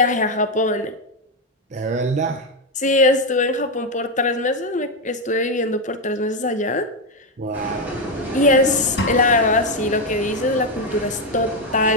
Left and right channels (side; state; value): both; normal; correlation 0.06